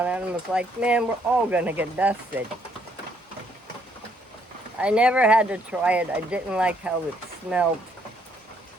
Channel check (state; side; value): normal; both; correlation 0.69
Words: and I was like, man, we're all going to get busted. I never had to try it. I didn't like how it smelled.